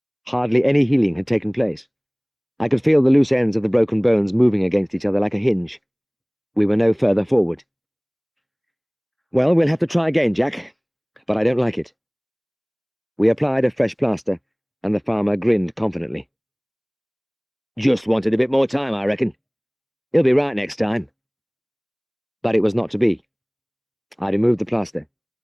Hardly any healing had taken place. I could feel the loose ends of the broken bones moving against each other like a hinge. We were no further forward. Well, we'll have to try again, Jack, but I don't like it. We applied a fresh plaster, and the farmer grinned confidently. Just wanted a bit more time, I reckon. He'll be right next time. But it was not to be. I removed the plaster.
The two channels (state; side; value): identical; both; correlation 1.00